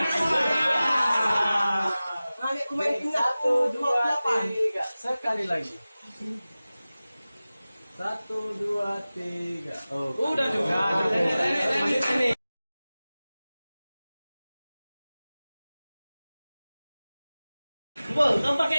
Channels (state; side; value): inverted; both; correlation -0.97